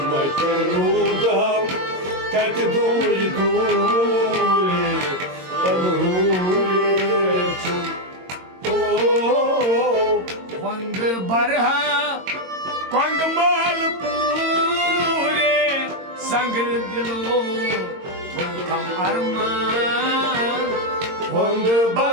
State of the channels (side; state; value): left; late; 22 ms